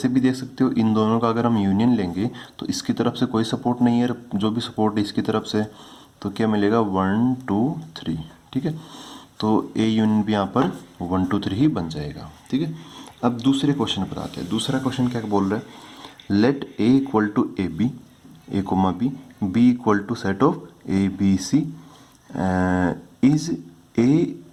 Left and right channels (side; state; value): both; identical; correlation 1.00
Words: भी देख सकते हो इन दोनों का अगर हम यूनियन लेंगे तो इसकी तरफ से कोई सपोर्ट नहीं है, जो भी सपोर्ट है इसकी तरफ से, तो क्या मिलेगा 1 2 3। ठीक है, तो ए यूनियन भी यहाँ पर 1 2 3 ही बन जाएगा। ठीक है, अब दूसरे क्वेश्चन पर आते हैं। दूसरा क्वेश्चन क्या बोल रहा है let A equal to A B a comma b B equal to set of a B c is A